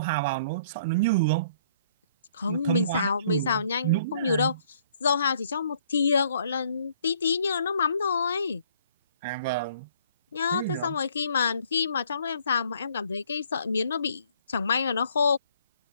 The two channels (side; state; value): both; inverted; correlation -0.61